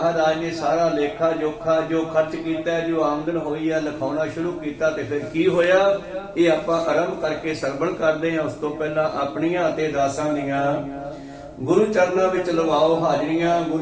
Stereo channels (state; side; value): identical; both; correlation 1.00